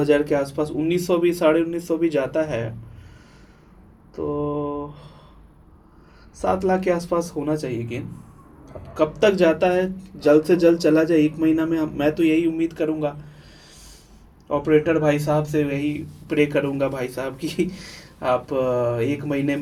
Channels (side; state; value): both; identical; correlation 1.00